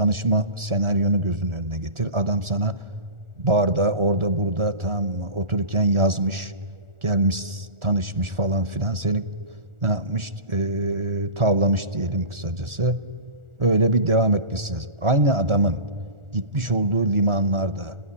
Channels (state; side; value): late; left; 1.4 ms